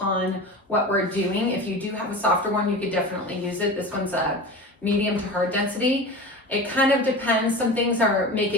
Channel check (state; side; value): normal; both; correlation 0.32